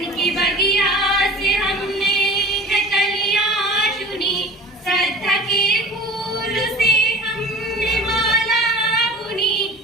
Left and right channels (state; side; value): normal; both; correlation 0.39